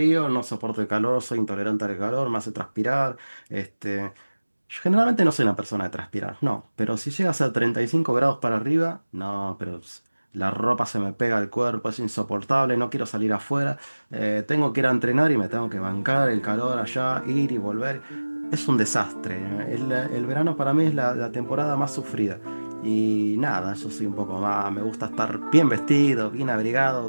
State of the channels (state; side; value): inverted; both; correlation -1.00